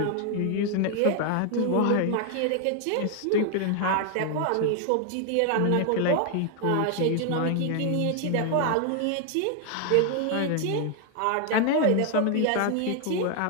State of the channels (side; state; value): both; different; correlation 0.00